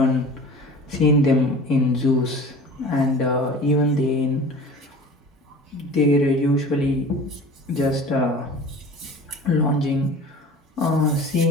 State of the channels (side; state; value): both; normal; correlation 0.40